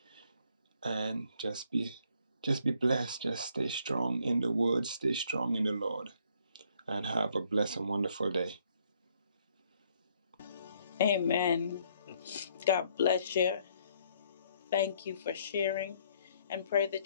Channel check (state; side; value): inverted; both; correlation -0.67